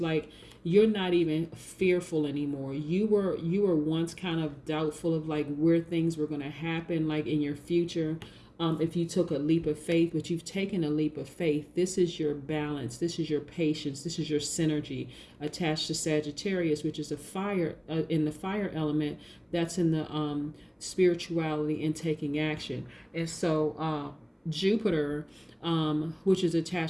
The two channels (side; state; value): both; identical; correlation 1.00